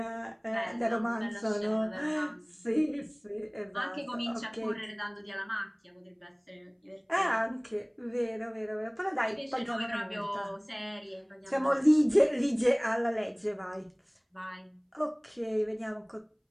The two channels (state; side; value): identical; both; correlation 1.00